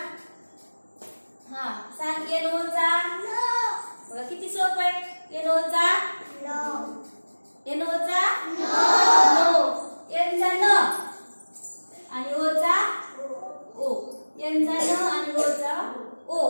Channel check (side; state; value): both; inverted; correlation -1.00